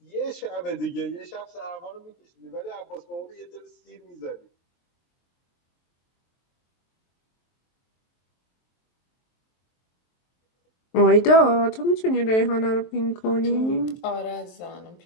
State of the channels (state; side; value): late; right; 23 ms